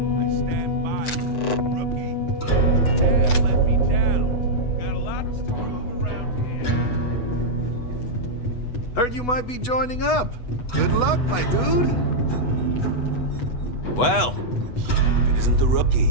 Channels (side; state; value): right; late; 8.1 ms